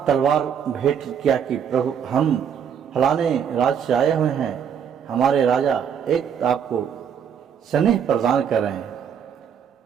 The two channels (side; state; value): left; quieter; 7.9 dB